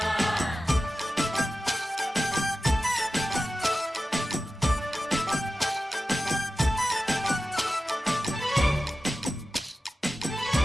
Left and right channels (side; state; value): both; normal; correlation 0.94